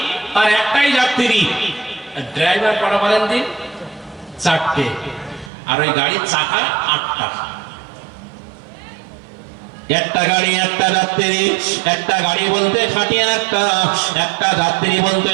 আর একটাই যাত্রী। ড্রাইভার কটা বলেন দিন? 4টে। আর ওই গাড়ির চাকা 8টা। একটা গাড়ি, একটা যাত্রী। একটা গাড়ি বলতে খাটিয়া একটা, একটা যাত্রী বলতে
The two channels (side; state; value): left; drops out; at 5.5 s